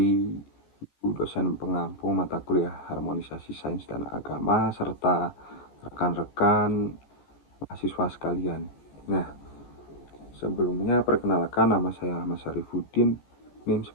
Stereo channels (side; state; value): right; late; 14 ms